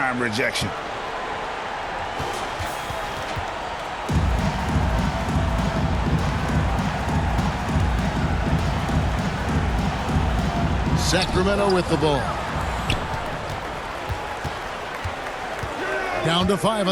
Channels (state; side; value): identical; both; correlation 1.00